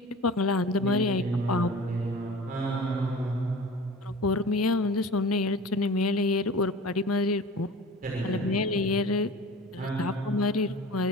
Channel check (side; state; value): both; normal; correlation 0.39